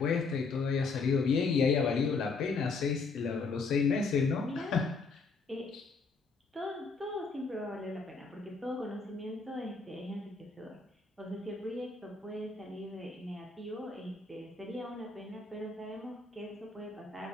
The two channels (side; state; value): right; quieter; 4.3 dB